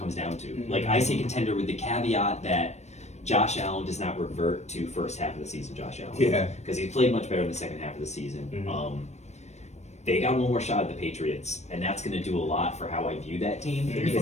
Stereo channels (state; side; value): late; right; 0.32 ms